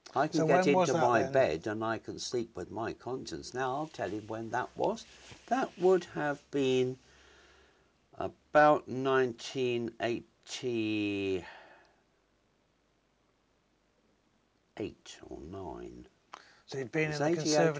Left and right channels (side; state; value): both; identical; correlation 1.00